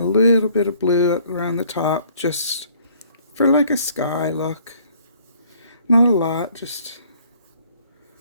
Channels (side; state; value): both; inverted; correlation -0.60